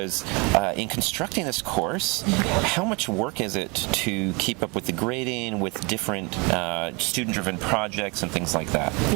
in constructing this course, how much work is it to keep up with the grading, with different student-driven projects and things like that?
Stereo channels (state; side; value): quieter; left; 28.9 dB